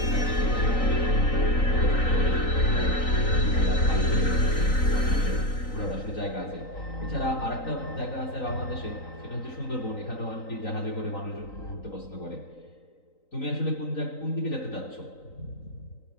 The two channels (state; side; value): late; right; 3.9 ms